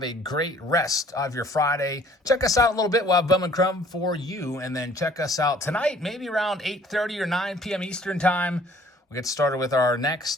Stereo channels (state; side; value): normal; both; correlation 0.56